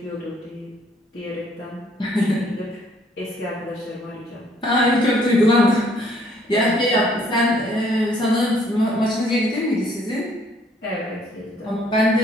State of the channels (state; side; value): normal; both; correlation 0.63